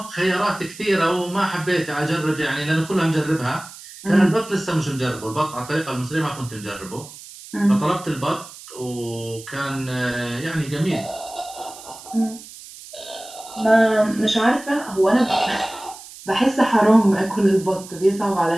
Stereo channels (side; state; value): right; noise; hiss, 17 dB below the sound